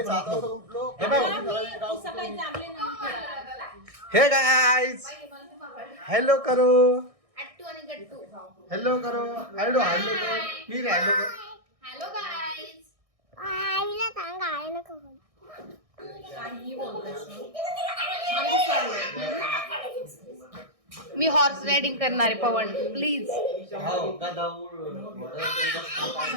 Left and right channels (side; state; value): left; late; 1.6 ms